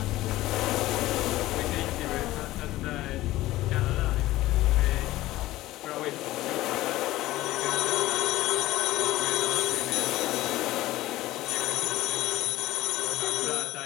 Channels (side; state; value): right; quieter; 16.7 dB